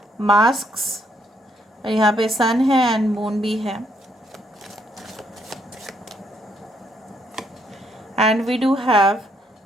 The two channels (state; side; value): normal; both; correlation 0.72